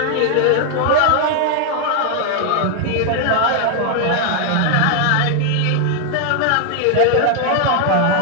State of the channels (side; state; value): both; different; correlation 0.00